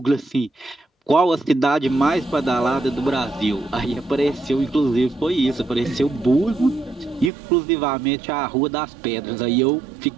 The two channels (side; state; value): left; drops out; at 7.3 s